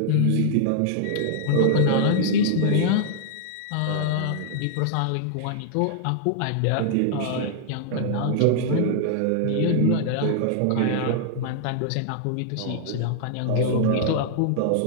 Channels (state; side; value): different; both; correlation -0.01